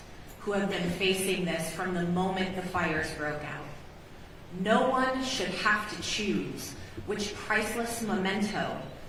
who have been facing this from the moment the fires broke out. No one should have to choose which priceless memento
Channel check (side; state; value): both; identical; correlation 1.00